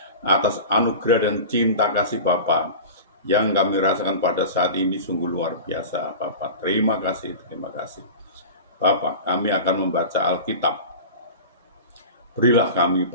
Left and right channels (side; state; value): both; inverted; correlation -0.33